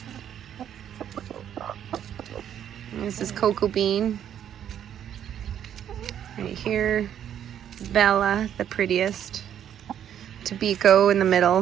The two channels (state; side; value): quieter; left; 9.8 dB